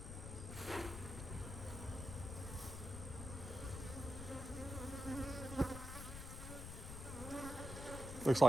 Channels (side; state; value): left; noise; rumble, 8 dB below the sound